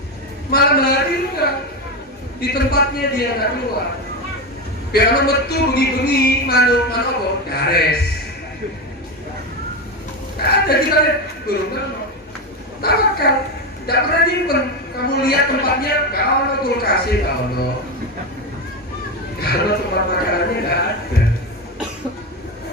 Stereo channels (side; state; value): both; normal; correlation 0.15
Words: malam hari enggak. Di tempatnya dia nggak keluar. Biar metu bengi-bengi manu apa? Gares. Nggak ada kita lihat burung kan. Tawakal, nggak pernah nyimpen. Kamu lihat tempatnya, nggak ada kulkasnya, nggak ada. Kalau tempat makanannya nggak ada.